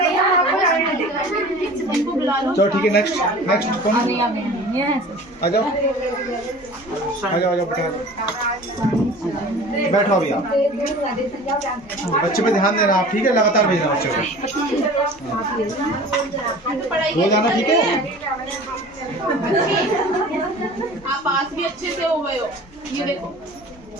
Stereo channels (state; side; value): normal; both; correlation 0.42